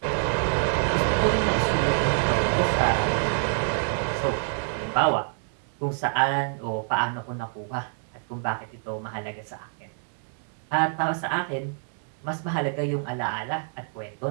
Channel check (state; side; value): silent; left; 60 dB below the other